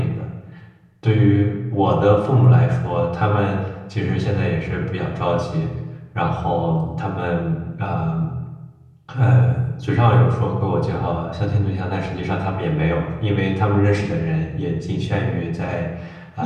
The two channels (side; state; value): both; identical; correlation 1.00